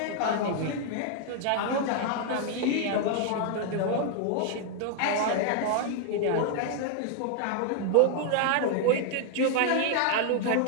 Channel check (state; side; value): different; both; correlation 0.00